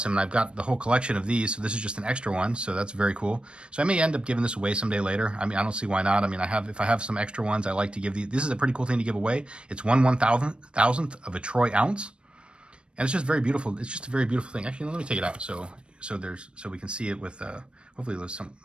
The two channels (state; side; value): late; left; 0.056 ms